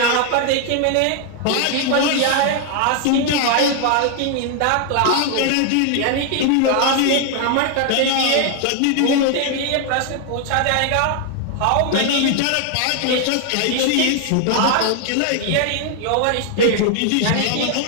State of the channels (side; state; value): both; different; correlation 0.00